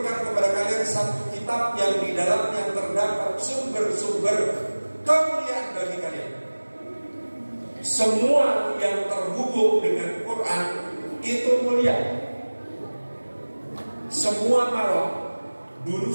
kepada kalian satu kitab yang di dalamnya terdapat sumber-sumber kemuliaan bagi kalian. Semua yang terhubung dengan Quran itu mulia. Semua malam dulu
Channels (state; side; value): inverted; both; correlation -1.00